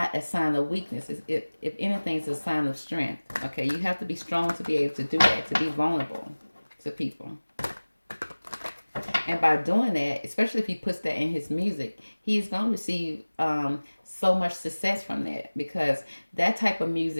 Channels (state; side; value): inverted; both; correlation -1.00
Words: a sign of weakness. If anything, it's a sign of strength. Okay, you have to be strong to be able to do that, to be vulnerable to people. And by doing that, especially if he puts that in his music, he's going to receive so much success from that, because that type of